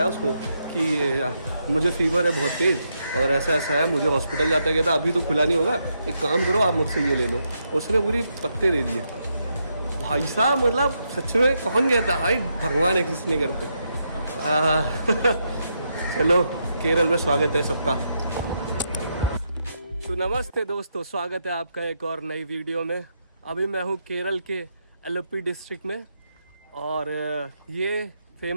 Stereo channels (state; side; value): inverted; both; correlation -0.81